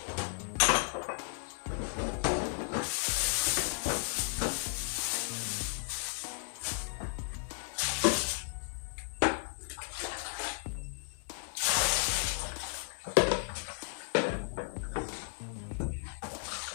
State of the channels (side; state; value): right; silent; 55 dB below the other